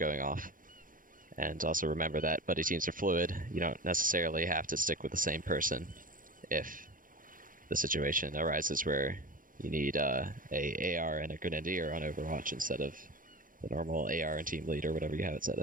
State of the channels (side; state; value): left; late; 0.40 ms